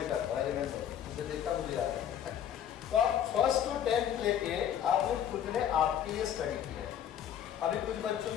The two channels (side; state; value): right; quieter; 9.6 dB